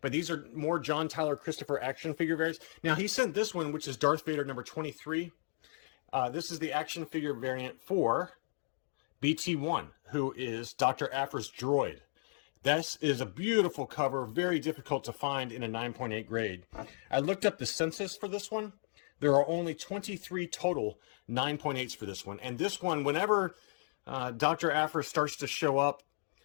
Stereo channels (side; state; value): right; silent; digital silence